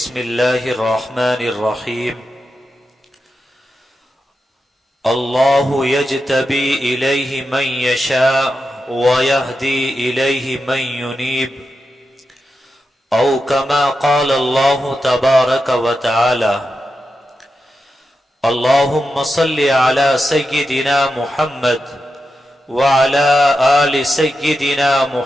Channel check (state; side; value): normal; both; correlation 0.89